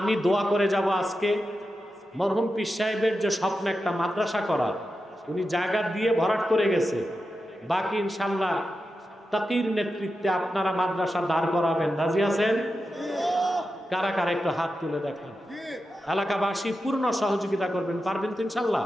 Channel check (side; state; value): both; normal; correlation 0.90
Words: দোয়া করে যাব আজকে মরহুম পীর সাহেবের যে স্বপ্ন একটা মাদ্রাসা করার, উনি জায়গা দিয়ে ভরাট করে গেছে। বাকি ইনশাল্লাহ তাকির নেতৃত্বে আপনারা মাদ্রাসা দাঁড় করাবেন। রাজি আছেন? কারা কারা একটু হাত তুলে দেখান। এলাকাবাসী পূর্ণ সহযোগিতা করবেন, পারবেন তো ইনশাল্লাহ?